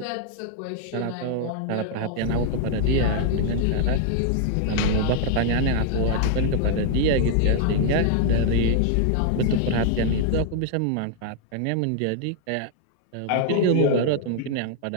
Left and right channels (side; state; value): both; different; correlation -0.01